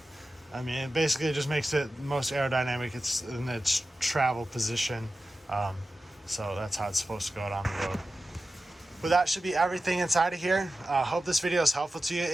I mean, it basically just makes it most aerodynamic. It's in its travel position. So that's how it's supposed to go down the road. But that should be everything inside of here. Hope this video is helpful to you.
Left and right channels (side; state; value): both; normal; correlation 0.94